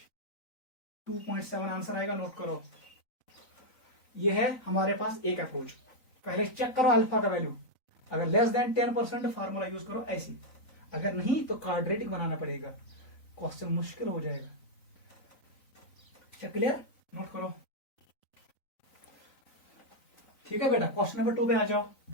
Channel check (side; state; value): right; late; 3.9 ms